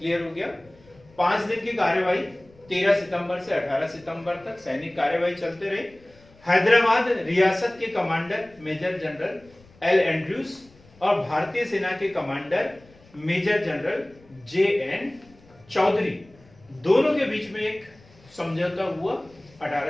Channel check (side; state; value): left; noise; rumble, 27 dB below the sound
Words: हो गया? 5 दिन की कार्यवाही 13 सितंबर से 18 सितंबर तक सैनिक कार्यवाही चलते रही। हैदराबाद रियासत के commander major general L Andrews और भारतीय सेना के commander major general JN Chaudhary, दोनों के बीच में एक समझौता हुआ